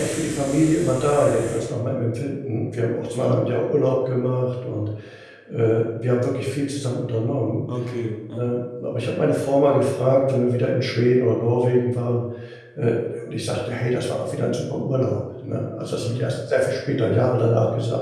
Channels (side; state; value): both; identical; correlation 1.00